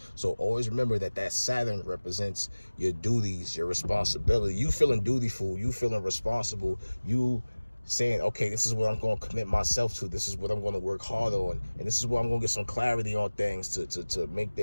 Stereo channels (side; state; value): both; inverted; correlation -1.00